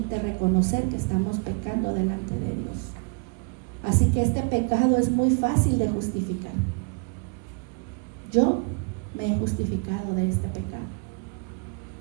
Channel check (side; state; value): left; quieter; 34.1 dB